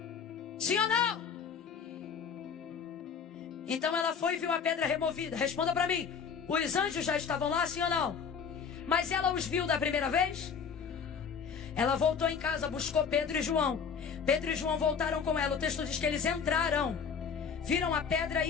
Sim ou não? Então ela foi e viu a pedra removida. Responda para mim. Os anjos já estavam lá, sim ou não? Mas ela os viu da primeira vez? Ela voltou em casa, buscou Pedro e João. Pedro e João voltaram com ela. O texto diz que eles entraram, viram a pedra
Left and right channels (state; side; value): quieter; right; 6.5 dB